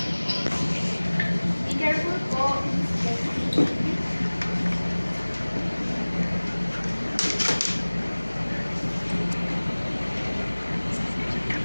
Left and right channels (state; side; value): inverted; both; correlation -1.00